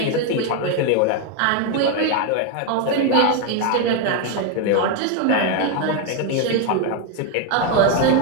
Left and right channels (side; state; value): both; different; correlation 0.01